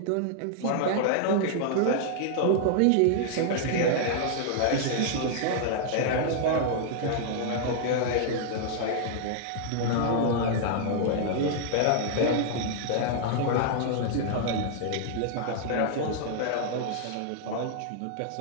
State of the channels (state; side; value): different; both; correlation -0.01